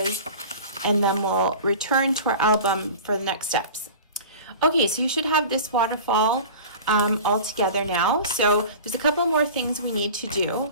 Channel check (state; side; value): inverted; both; correlation -0.37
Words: and then we'll return to our album for the next steps. Okay, so you should have this waterfall all together now. So there's a couple more things we need to do.